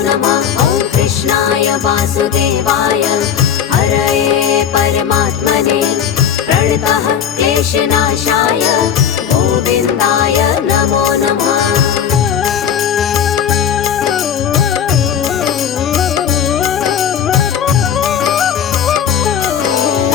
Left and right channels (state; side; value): quieter; right; 8.5 dB